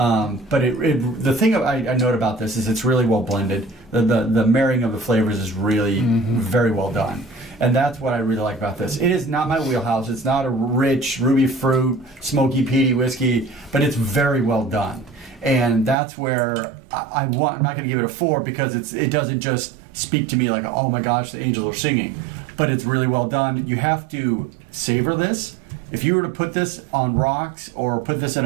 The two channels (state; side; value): drops out; left; at 16.0 s